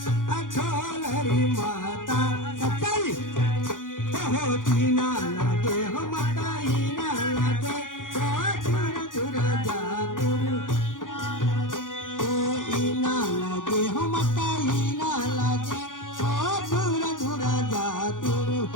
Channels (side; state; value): right; late; 0.89 ms